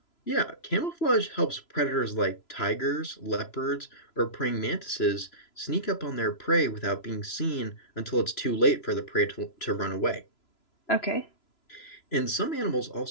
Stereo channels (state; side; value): late; right; 3.0 ms